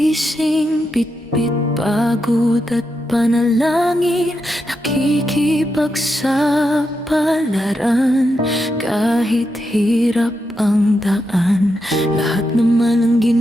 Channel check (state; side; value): normal; both; correlation 0.85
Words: bitbit pagod at panalangin, nakikipagsapalaran kahit hirap ang daan. Lahat naman ang